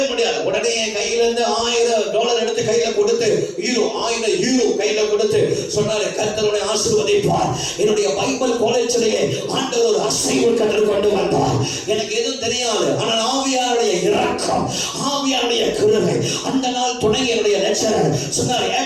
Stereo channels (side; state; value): both; identical; correlation 1.00